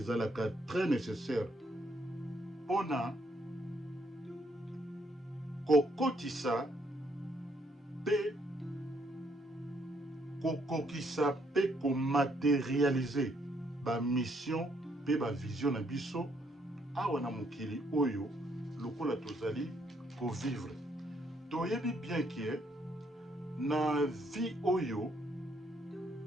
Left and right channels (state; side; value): normal; both; correlation 0.71